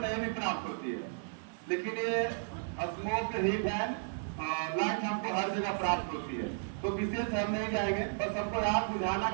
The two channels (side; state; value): left; silent; digital silence